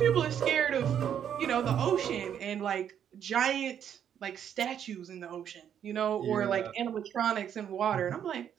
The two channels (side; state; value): left; quieter; 9.1 dB